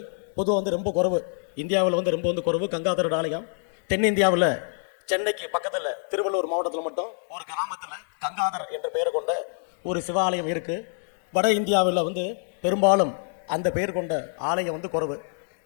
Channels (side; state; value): right; silent; digital silence